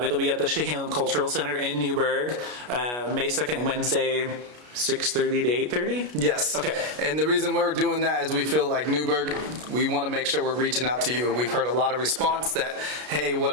It'll be at the Chehalem Cultural Center in Newburgh, May 2nd, Wednesday, 6:30 to 8:30? Yes. Okay. And the reason we're doing that is we feel like Newburgh, we want to make sure we're reaching out to you. We've heard a lot of response that, hey, what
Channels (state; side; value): late; left; 33 ms